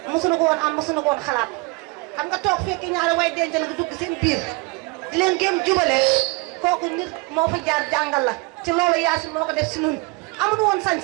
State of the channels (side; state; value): left; quieter; 26.8 dB